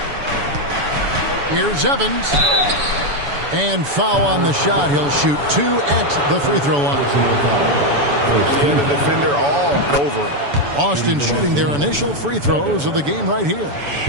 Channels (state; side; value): late; left; 7.0 ms